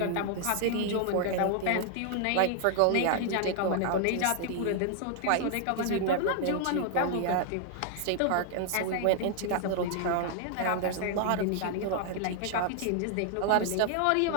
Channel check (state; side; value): different; both; correlation 0.00